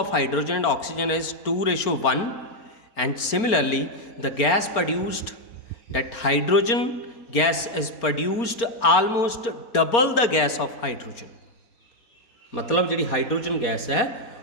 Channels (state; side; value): late; right; 4.4 ms